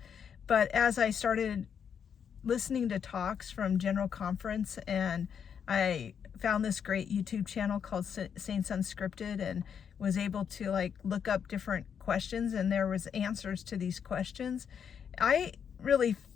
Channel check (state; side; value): quieter; right; 7.5 dB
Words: But as I started listening to talks from General Conference, and I found this great YouTube channel called Saints Unscripted, and was able to like look up different questions and there was answers to these questions. I really